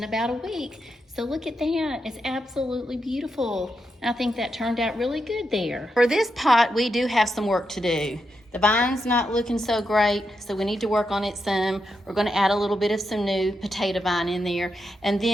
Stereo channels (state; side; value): normal; both; correlation 0.85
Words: about a week. So look at that, it's absolutely beautiful. I think that turned out really good there. For this pot, we do have some work to do. The vine's not looking so great, so we need to work on it some. We're gonna add a little bit of some new potato vine in there. And